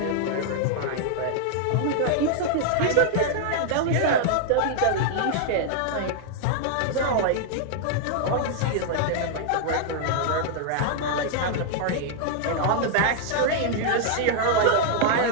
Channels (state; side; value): different; both; correlation -0.01